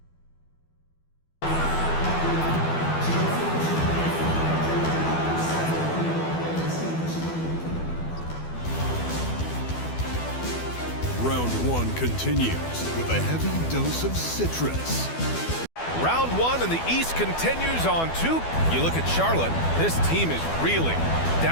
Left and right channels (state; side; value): late; right; 12 ms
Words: Round one continues with a heavy dose of citrus. Round one and the East continues on two. You look at Charlotte, this team is reeling.